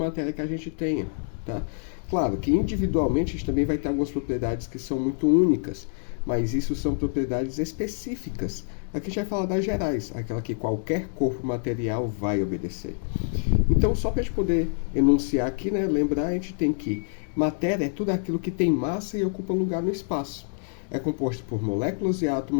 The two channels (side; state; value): right; silent; digital silence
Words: que a gente tenha, tá? Claro que individualmente a gente também vai ter algumas propriedades que são muito únicas, mas isso são propriedades específicas. Aqui a gente vai falar das gerais, aquela que qualquer corpo material vai obedecer. Então, só para a gente poder enunciar aqui, né, lembrar, a gente tem que matéria é tudo aquilo que tem massa e ocupa lugar no espaço. É composto por moléculas e